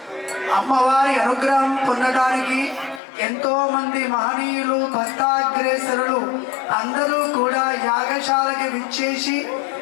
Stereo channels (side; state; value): right; drops out; at 3.0 s